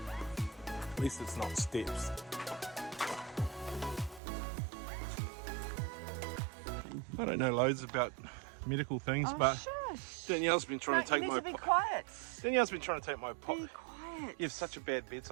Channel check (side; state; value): left; drops out; at 4.2 s